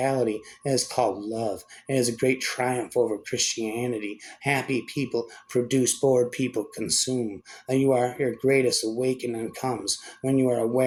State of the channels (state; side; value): identical; both; correlation 1.00